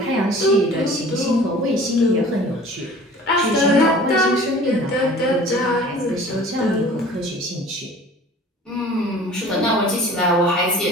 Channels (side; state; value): both; normal; correlation 0.46